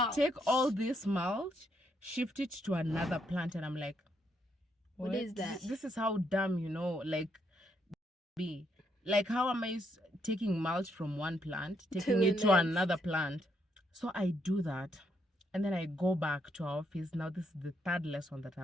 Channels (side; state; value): both; normal; correlation 0.75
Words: take all this mulch, shift it to another plant, and I'm like, What is that? This is how dumb, like, be. Like, how am I taking mulch from one plant, taking the it to next. another plant? So I do that, and then I go back to our office. Now this is the third lesson that